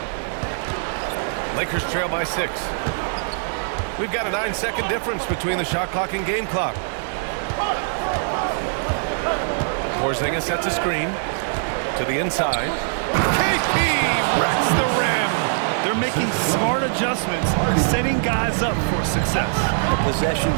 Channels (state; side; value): silent; left; digital silence